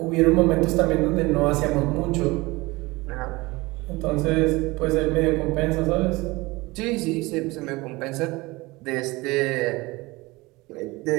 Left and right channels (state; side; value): quieter; left; 22.2 dB